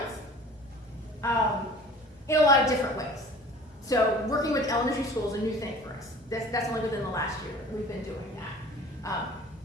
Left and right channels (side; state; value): both; normal; correlation 0.45